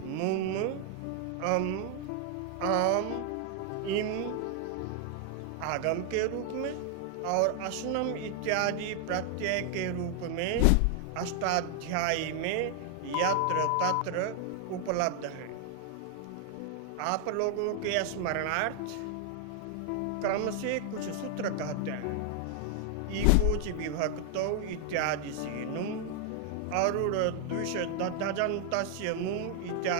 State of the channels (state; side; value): different; both; correlation 0.00